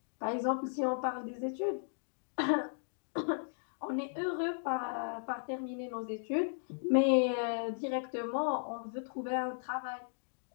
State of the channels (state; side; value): silent; right; digital silence